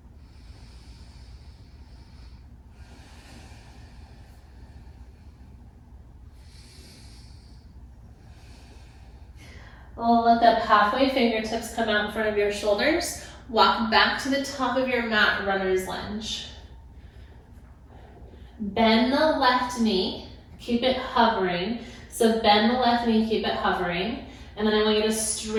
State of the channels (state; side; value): identical; both; correlation 1.00